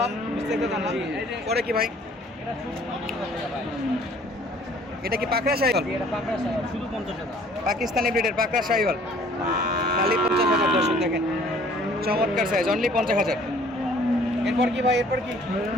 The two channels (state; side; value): normal; both; correlation 0.55